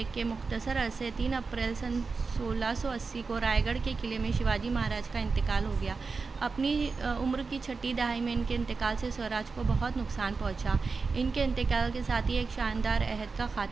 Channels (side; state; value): left; quieter; 4.5 dB